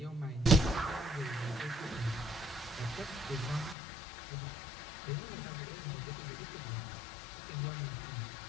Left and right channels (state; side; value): drops out; right; at 3.8 s